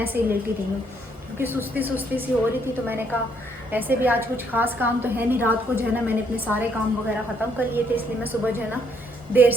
ऐसे ही लेटी रही हूँ क्योंकि सुस्ती सी हो रही थी। तो मैंने कहा ऐसे भी आज कुछ खास काम तो है नहीं, रात को जो है ना मैंने अपने सारे काम वगैरह ख़त्म कर लिए थे, इसलिए मैं सुबह जो है ना देर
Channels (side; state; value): both; normal; correlation 0.70